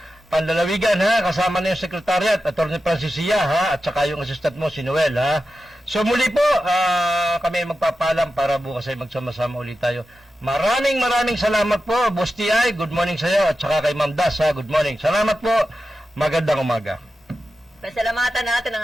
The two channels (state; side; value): normal; both; correlation 0.92